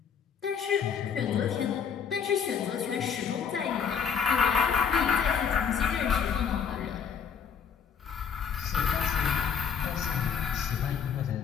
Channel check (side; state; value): right; quieter; 7.1 dB